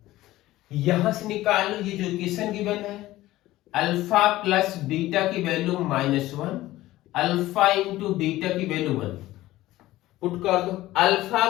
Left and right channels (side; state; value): right; quieter; 16.4 dB